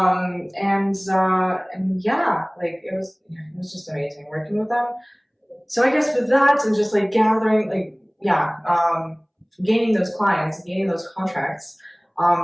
And yeah, like it was just amazing working with them. So I guess with that and just like gathering, like, gaining those clients, gaining those contracts,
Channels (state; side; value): identical; both; correlation 1.00